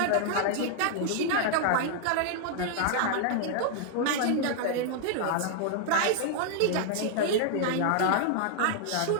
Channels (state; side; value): different; both; correlation -0.01